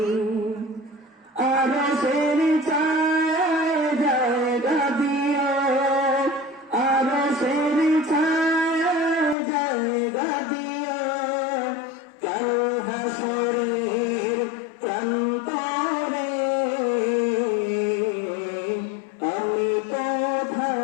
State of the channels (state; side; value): drops out; right; at 9.3 s